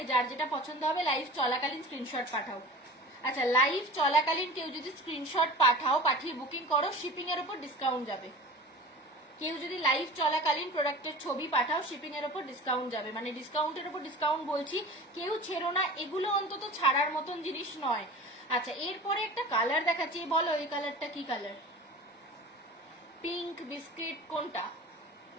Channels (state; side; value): normal; both; correlation 0.36